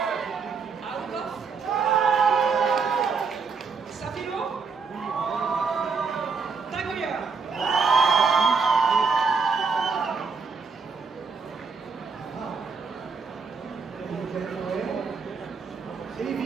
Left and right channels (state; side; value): quieter; left; 5.1 dB